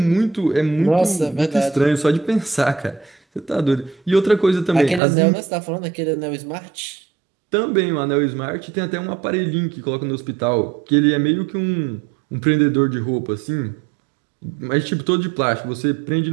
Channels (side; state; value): left; drops out; at 5.0 s